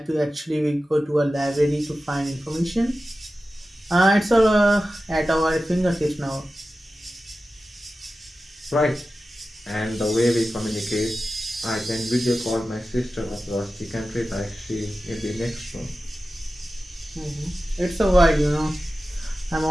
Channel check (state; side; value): normal; both; correlation 0.94